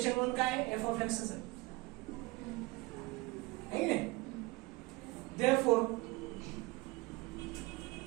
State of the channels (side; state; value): left; quieter; 22.8 dB